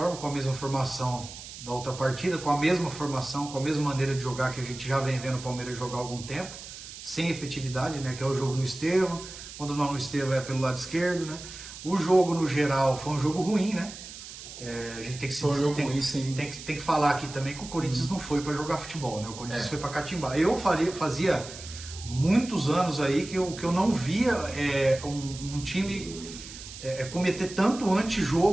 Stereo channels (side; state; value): right; noise; hiss, 13 dB below the sound